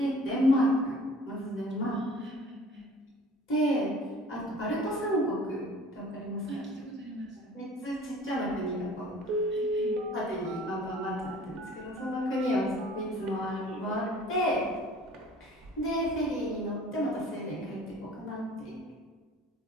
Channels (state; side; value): normal; both; correlation 0.48